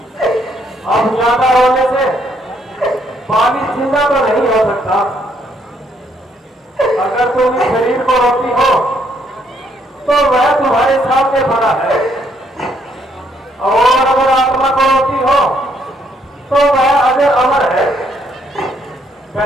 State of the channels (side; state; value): both; normal; correlation 0.71